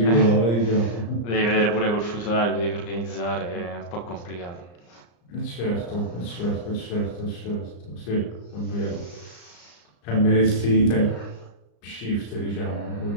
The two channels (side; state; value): right; late; 34 ms